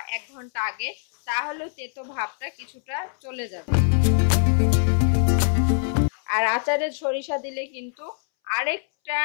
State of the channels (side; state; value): right; silent; 63 dB below the other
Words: 1 ঘন্টা আগে, তাহলেও তেতো ভাবটা কিছুটা চলে যাবে। আর আচারের সরিষা দিলে কিন্তু আরেকটা